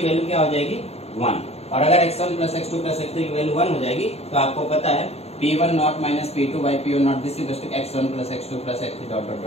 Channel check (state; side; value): late; right; 0.30 ms